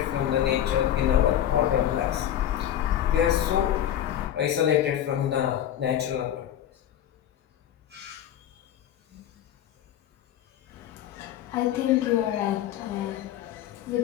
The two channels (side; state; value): right; quieter; 11.0 dB